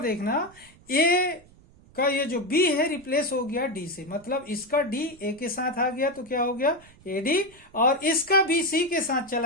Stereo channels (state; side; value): noise; right; rumble, 26 dB below the sound